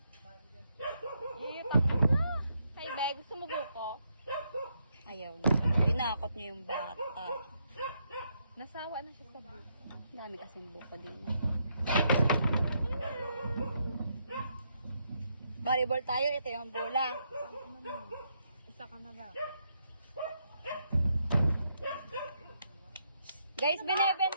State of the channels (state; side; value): inverted; both; correlation -0.77